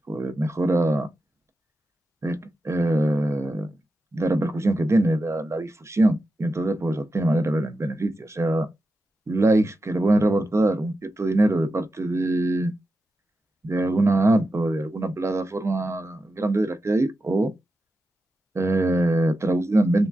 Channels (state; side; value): normal; both; correlation 0.90